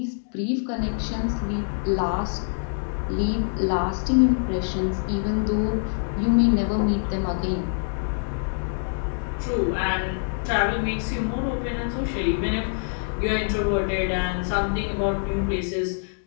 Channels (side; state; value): right; silent; digital silence